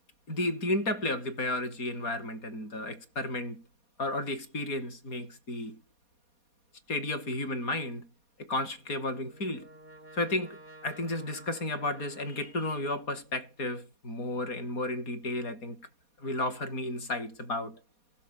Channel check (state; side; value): late; right; 4.2 ms